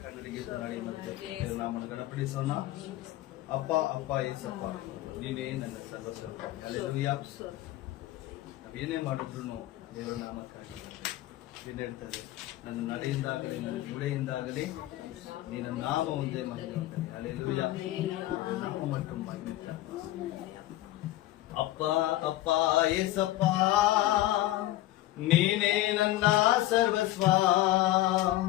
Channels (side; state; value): right; quieter; 15.8 dB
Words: கண்ணடிக்கு நாம கணப்படி சொன்னா ಅಪ್ಪ ಅಪ್ಪ ಏಸಪ್ಪ ನೀನೇ ನನ್ನ ಸರ್ವಸ್ವ. ಹಲ್ಲೆಲೂಯಾ. ನಾವೇನೇ ಮಾಡಿದ್ರು ದೇವರ ನಾಮಕ್ಕಾಗಿ ನೀನು ಹೇಳ್ತದೆ, ನನ್ನ ನಡೆಯಿಂದಾಗಲಿ ನನ್ನ ನುಡಿಯಿಂದಾಗಲಿ ನೀನು ನಾಮ ಒಂದೇ ಮಹಿಮೆ. ಹಲ್ಲೆಲೂಯಾ. ನಾಮ ಮಟ್ಟು ಮಹಿಮೆ. ಅಪ್ಪ ಅಪ್ಪ ಏಸಪ್ಪ ನೀನೇ ನನ್ನ ಸರ್ವಸ್ವ.